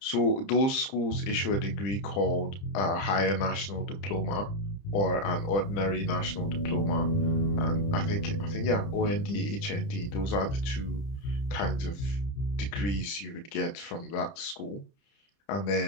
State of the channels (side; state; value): right; late; 30 ms